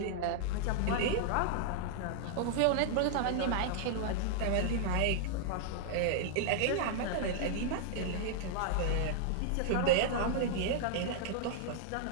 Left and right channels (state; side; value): different; both; correlation -0.01